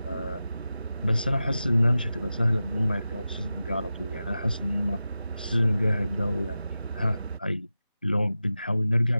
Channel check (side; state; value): both; inverted; correlation -0.93